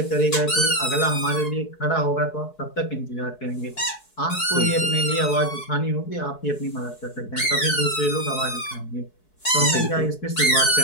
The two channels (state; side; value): late; right; 4.7 ms